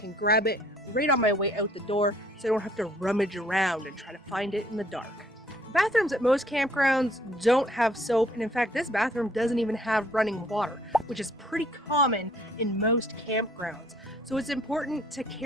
grab it right on my way out the door, so I don't have to rummage around and try to find it in the dark. Bathrooms at most campgrounds don't have soap, and in fact this bathroom doesn't even have running water, which is pretty common in most campgrounds. So it's important to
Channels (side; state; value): both; normal; correlation 0.61